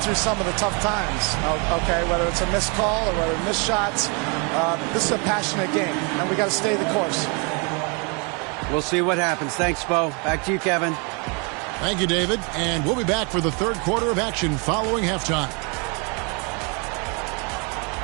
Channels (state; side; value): quieter; left; 33.4 dB